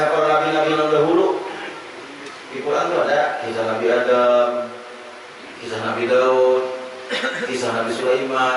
para nabi-nabi yang dahulu. Di Quran itu ada kisah Nabi Adam, kisah Nabi Daud, kisah Nabi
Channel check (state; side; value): identical; both; correlation 1.00